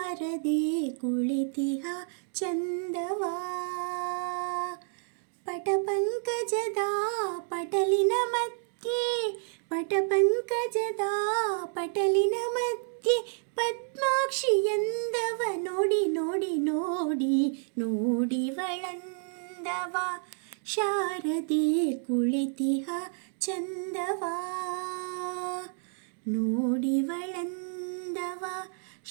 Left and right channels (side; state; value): left; silent; 58 dB below the other